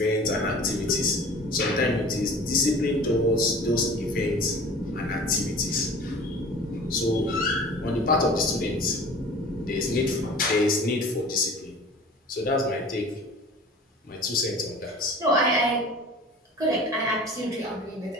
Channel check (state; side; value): normal; both; correlation 0.42